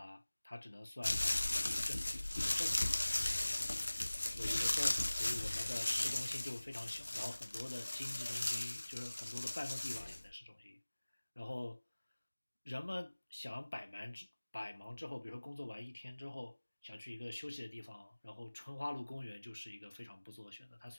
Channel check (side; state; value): both; inverted; correlation -1.00